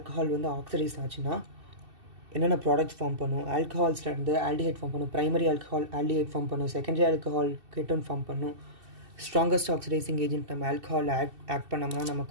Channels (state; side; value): late; left; 2.7 ms